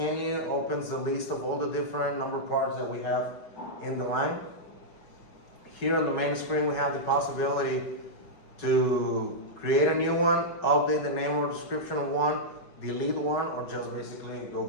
opens the list of all the different number parts that we have in the line. Here on the main screen, we have the possibility to create a new one, update the name or description of one, delete one, or just basically go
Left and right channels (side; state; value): right; late; 4.7 ms